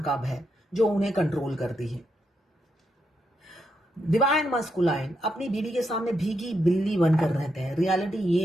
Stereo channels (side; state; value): both; normal; correlation 0.81